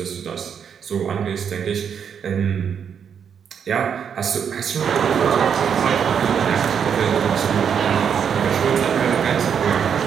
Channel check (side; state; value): left; quieter; 7.6 dB